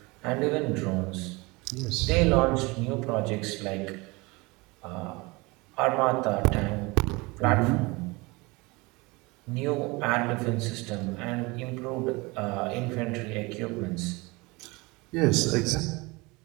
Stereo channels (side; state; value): left; quieter; 24.8 dB